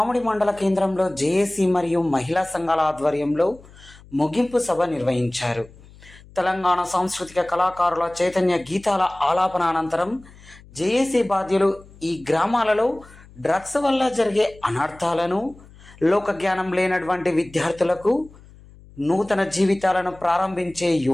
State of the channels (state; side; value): noise; left; hum, 23 dB below the sound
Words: మండల కేంద్రంలో జేఏసీ మరియు మహిళా సంఘాల ఆధ్వర్యంలో ముగింపు సభ నిర్వహించారు. తెలంగాణ సాంస్కృతిక కళాకారుల చైతన్య గీతాల ఆలాపన అనంతరం జేఏసీ బాధ్యులు ఈ గ్రామాలలో డ్రగ్స్ వల్ల జరిగే అనర్థాలను, లోకజ్ఞానం లేనటువంటి విద్యార్థులకు నూతన జీవితాలను ప్రారంభించే